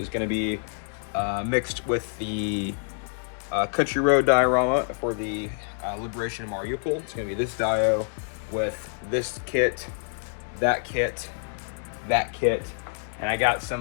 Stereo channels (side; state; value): right; silent; 60 dB below the other